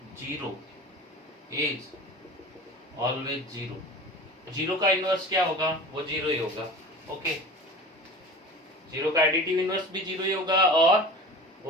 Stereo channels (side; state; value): both; normal; correlation 0.36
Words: 0 is always 0। 0 का इनवर्स क्या होगा, वो 0 ही होगा। ओके, 0 का एडिटिव इनवर्स भी 0 ही होगा और